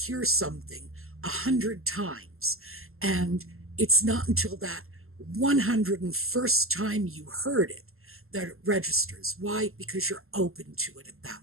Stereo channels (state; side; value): late; left; 0.62 ms